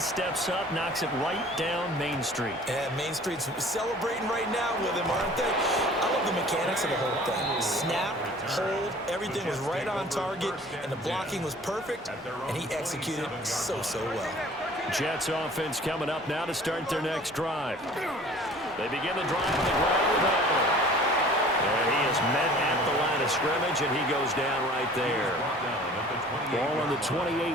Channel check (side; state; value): both; normal; correlation 0.48